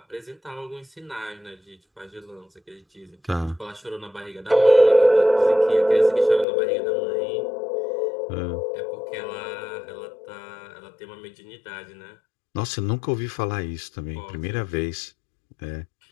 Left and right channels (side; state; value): right; drops out; at 6.5 s